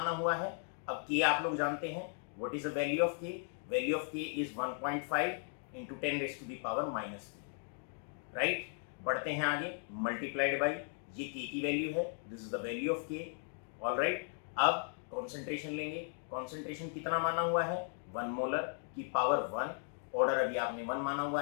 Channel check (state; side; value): silent; right; 53 dB below the other